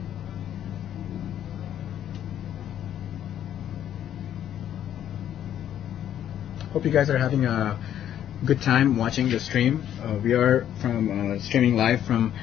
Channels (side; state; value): right; quieter; 10.5 dB